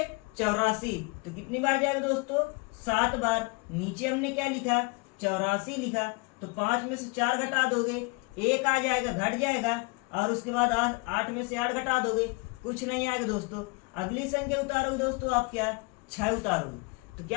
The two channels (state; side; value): quieter; right; 28.3 dB